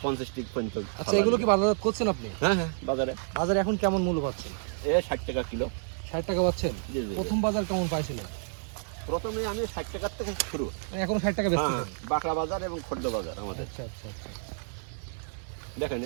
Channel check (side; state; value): left; silent; digital silence